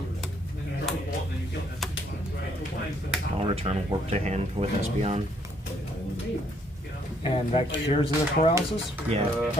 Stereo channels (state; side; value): normal; both; correlation 0.68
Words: I'll return warp to hand with Espeon. And that cures the paralysis? Yeah.